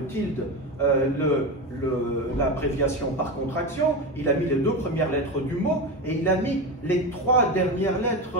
tilde l'abréviation par contraction. Il a mis les 2 premières lettres du mot, et il a mis les 3 dernières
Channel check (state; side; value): normal; both; correlation 0.20